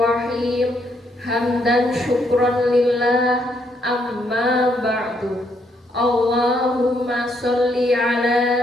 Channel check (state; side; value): normal; both; correlation 0.74